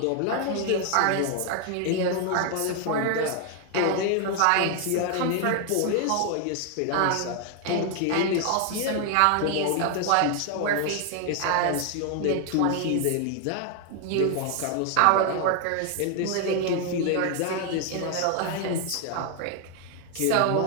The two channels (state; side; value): different; both; correlation 0.00